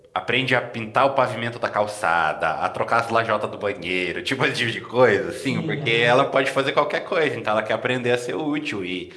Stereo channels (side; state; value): both; identical; correlation 1.00